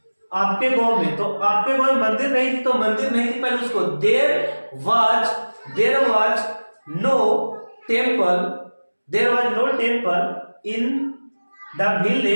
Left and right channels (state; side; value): inverted; both; correlation -1.00